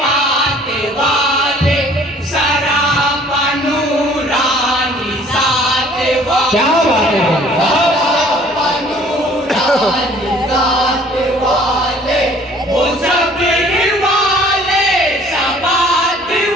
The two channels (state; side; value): normal; both; correlation 0.55